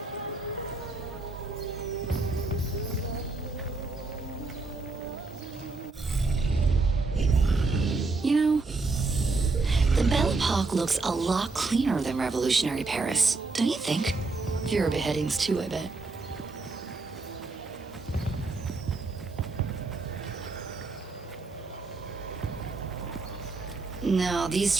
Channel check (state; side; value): quieter; left; 3.7 dB